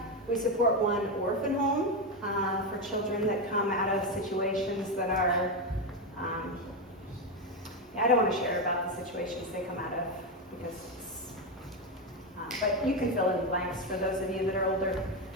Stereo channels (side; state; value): both; normal; correlation 0.10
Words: We support one orphan home for children that come out of situations that are, I don't want to share about the situations they come out of, because but you can fill in the blanks for those of you that are older.